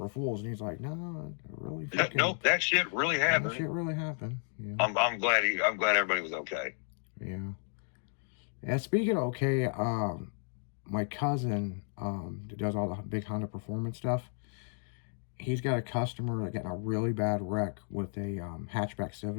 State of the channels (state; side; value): silent; right; 56 dB below the other